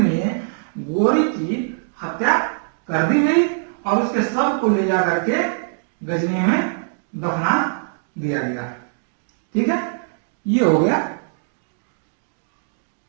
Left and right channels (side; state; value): left; silent; digital silence